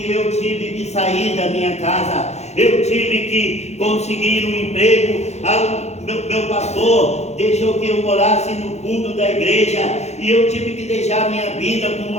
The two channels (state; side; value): late; right; 0.32 ms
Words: eu tive que sair da minha casa. Eu tive que conseguir um emprego. Meu pastor deixou que eu morasse no fundo da igreja, e eu tive que deixar minha vida com